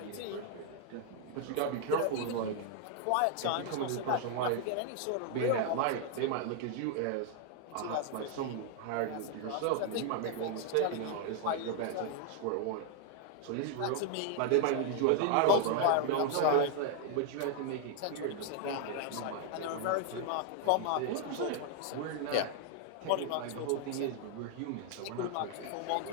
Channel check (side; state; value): both; different; correlation 0.00